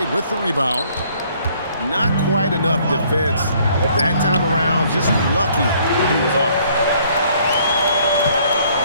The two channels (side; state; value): both; inverted; correlation -0.62